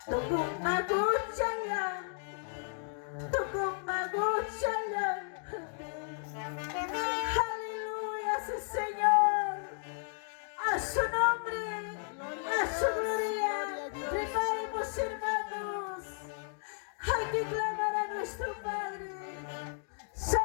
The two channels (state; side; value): silent; right; 55 dB below the other